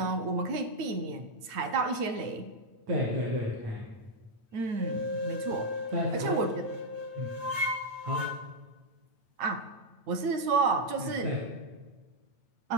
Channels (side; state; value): left; late; 8.9 ms